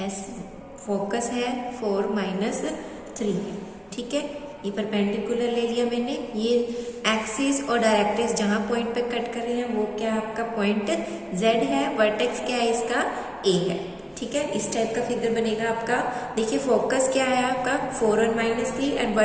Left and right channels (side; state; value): both; identical; correlation 1.00